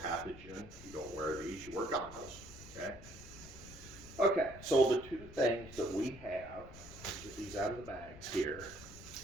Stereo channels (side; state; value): left; noise; rumble, 15 dB below the sound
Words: you don't wear these, you wear goggles. Okay. Okay, so the 2 things that we have, get these out of the bags here.